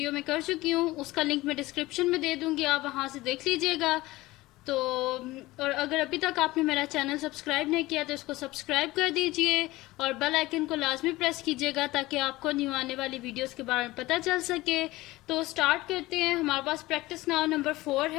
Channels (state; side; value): quieter; right; 19.0 dB